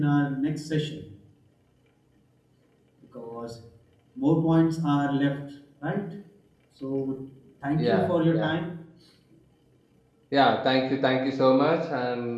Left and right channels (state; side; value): identical; both; correlation 1.00